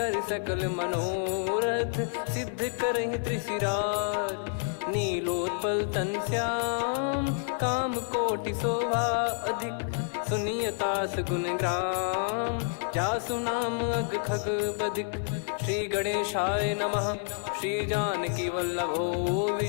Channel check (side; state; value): right; silent; 59 dB below the other